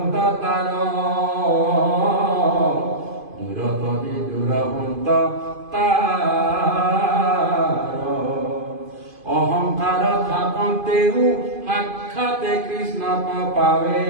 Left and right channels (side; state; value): left; late; 2.5 ms